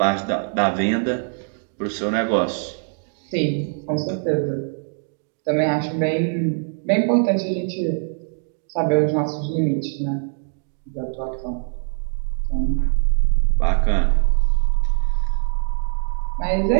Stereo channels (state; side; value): silent; left; 56 dB below the other